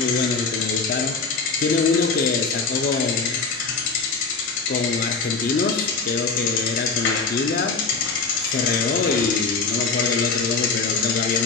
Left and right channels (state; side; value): quieter; right; 4.6 dB